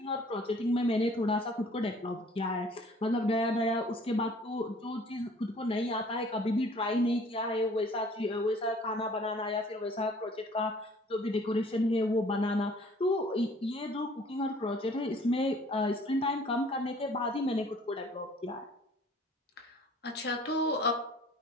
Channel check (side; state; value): both; normal; correlation 0.54